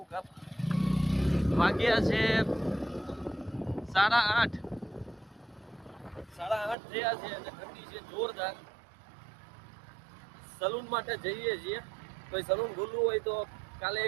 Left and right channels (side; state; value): left; drops out; at 6.8 s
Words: કાપ. વાગ્યા છે 8:30. 8:30 થયા છે અને ઠંડી છે જોરદાર. સલૂન માટે જઈએ છીએ. કોઈ સલૂન ખુલ્લું હોય તો કાલે